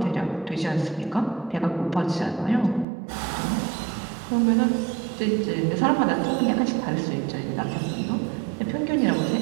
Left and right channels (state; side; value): drops out; left; at 2.9 s